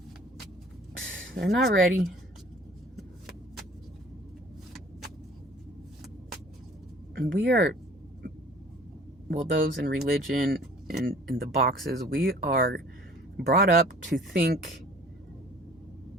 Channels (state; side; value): normal; both; correlation 0.50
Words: not ready. And we are, well, those in religion and in the boxes, we are brought up to think